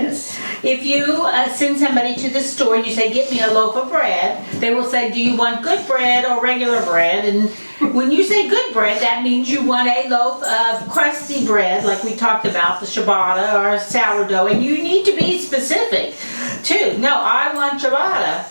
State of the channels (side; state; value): both; inverted; correlation -1.00